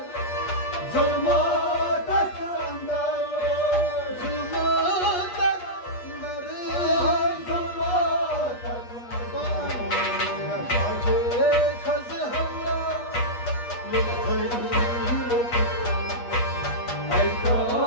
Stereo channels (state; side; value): late; right; 8.4 ms